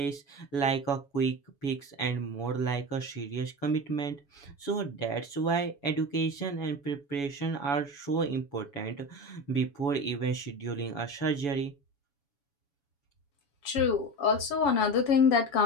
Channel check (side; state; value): right; late; 7.1 ms